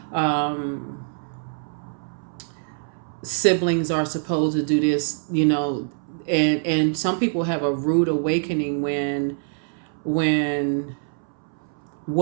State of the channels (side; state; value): left; silent; 62 dB below the other